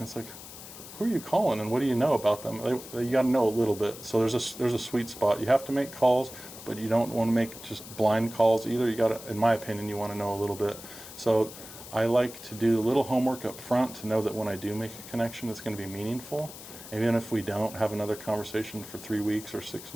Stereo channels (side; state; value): left; noise; hiss, 14 dB below the sound